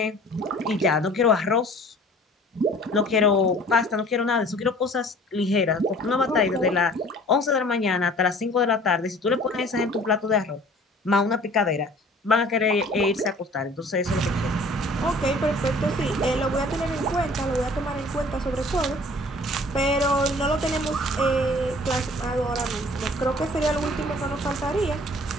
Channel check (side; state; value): both; normal; correlation 0.50